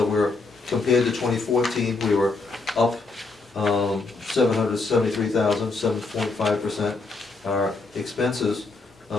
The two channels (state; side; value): quieter; right; 3.7 dB